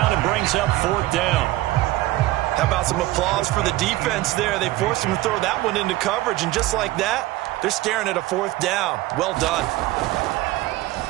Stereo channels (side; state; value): left; quieter; 17.6 dB